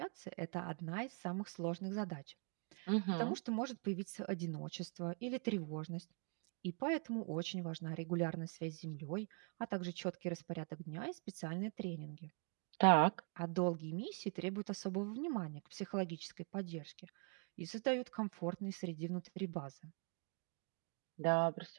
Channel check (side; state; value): left; quieter; 37.5 dB